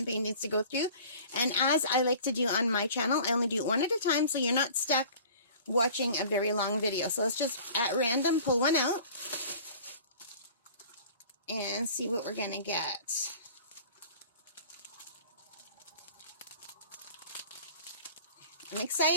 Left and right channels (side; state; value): both; inverted; correlation -0.45